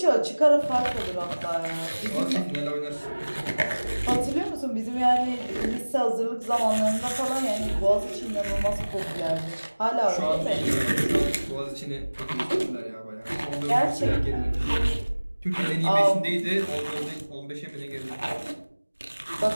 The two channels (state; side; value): inverted; both; correlation -1.00